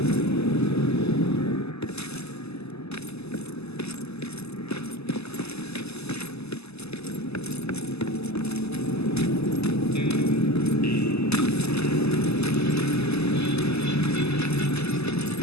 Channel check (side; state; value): right; late; 0.79 ms